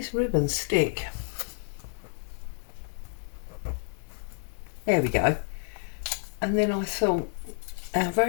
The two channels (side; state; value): right; silent; 58 dB below the other